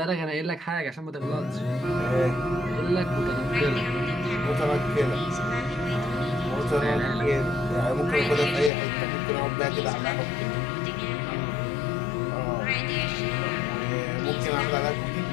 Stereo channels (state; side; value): drops out; right; at 8.7 s